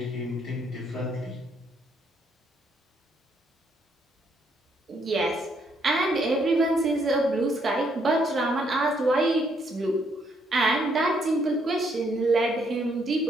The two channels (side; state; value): both; normal; correlation 0.72